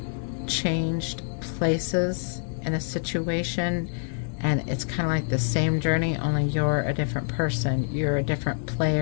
changed places in a situation, and it's kind of like the same journey, only you're a different person, you're a different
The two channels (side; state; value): right; silent; digital silence